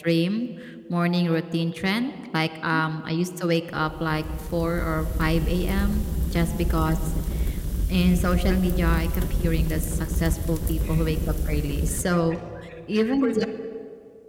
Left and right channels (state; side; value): identical; both; correlation 1.00